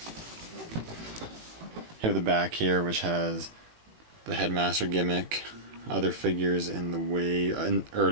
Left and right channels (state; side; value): late; left; 19 ms